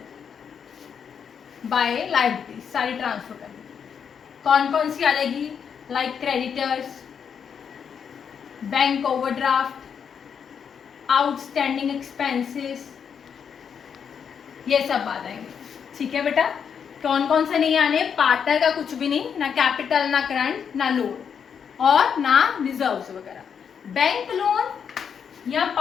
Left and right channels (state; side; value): quieter; right; 7.2 dB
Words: बाय लायबिलिटीज सारी ट्रांसफर करनी। कौन कौन सी आ जाएगी, like creditors, bank overdraft, outstanding expenses, ये सब आ जाएंगे। ठीक है बेटा, कौन कौन से नहीं आने, पार्टनर का कुछ भी नहीं, ना कैपिटल, ना करंट, ना लोन और ना रिजर्व्स वगैरह। बैंक लोन या